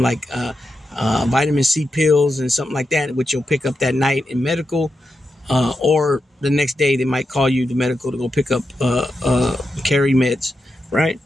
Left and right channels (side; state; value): both; normal; correlation 0.87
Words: like vitamin C pills and something like that, which you'll pick up that night in medical, or the next day they might call you to medical to go pick up carry meds, right?